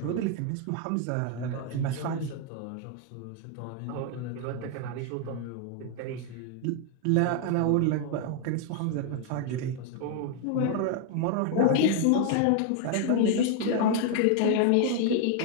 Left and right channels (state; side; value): different; both; correlation 0.00